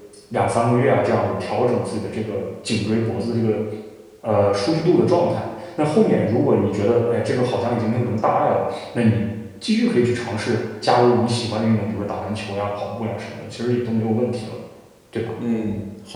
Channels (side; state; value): both; identical; correlation 1.00